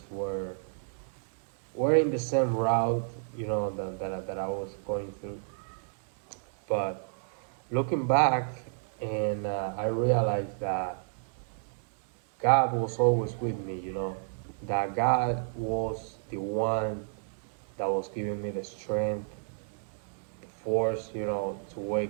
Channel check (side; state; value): left; silent; 57 dB below the other